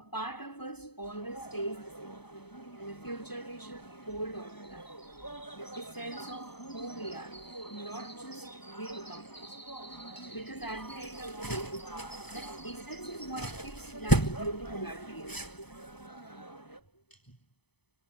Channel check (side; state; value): right; late; 0.98 ms